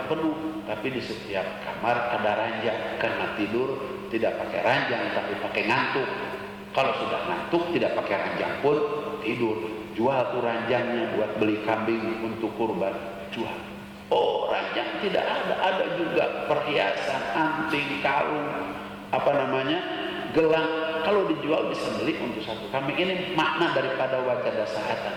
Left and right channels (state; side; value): identical; both; correlation 1.00